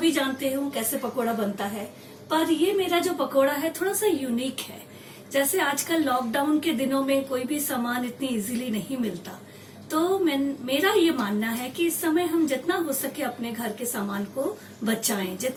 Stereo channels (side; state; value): both; identical; correlation 1.00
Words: जानते हो कैसे पकोड़ा बनता है, पर ये मेरा जो पकोड़ा है थोड़ा सा यूनिक है। जैसे आजकल लॉकडाउन के दिनों में कोई भी सामान इतनी इजीली नहीं मिलता, तो मेरा ये मानना है कि इस समय हम जितना हो सके अपने घर के सामान को बचाएं,